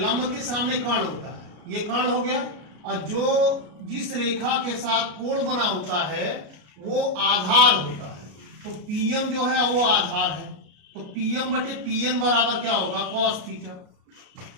के सामने कर्ण होता है, ये कर्ण हो गया। और जो जिस रेखा के साथ कोण बना होता है वो आधार होता है, तो पीएम जो है वो आधार है। तो पीएम बटे पीएन बराबर क्या होगा, कॉस थीटा।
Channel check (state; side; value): late; left; 33 ms